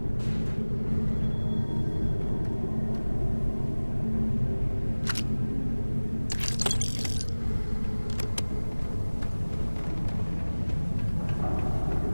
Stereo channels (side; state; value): both; inverted; correlation -1.00